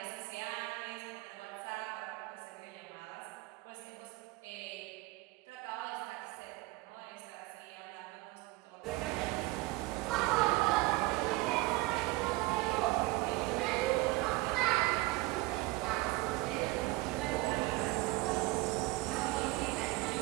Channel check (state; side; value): quieter; left; 21.2 dB